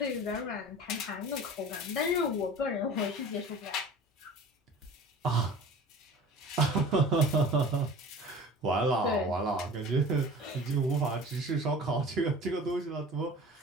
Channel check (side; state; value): both; normal; correlation 0.41